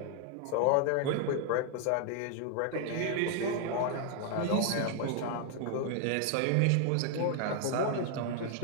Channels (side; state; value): both; different; correlation 0.00